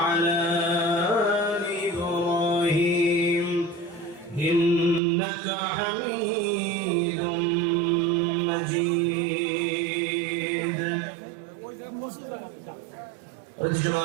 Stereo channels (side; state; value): left; drops out; at 5.0 s